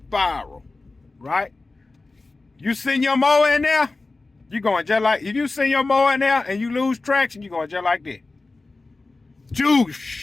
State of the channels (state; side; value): quieter; right; 3.5 dB